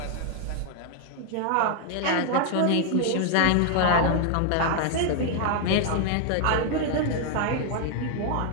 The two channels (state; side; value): different; both; correlation 0.00